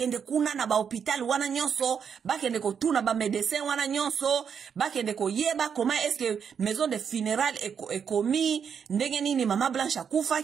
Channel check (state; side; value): quieter; left; 7.2 dB